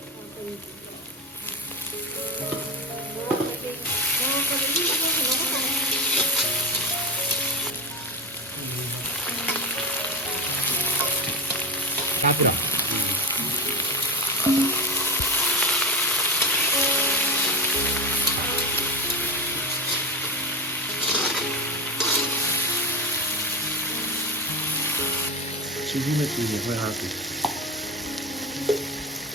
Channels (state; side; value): normal; both; correlation 0.23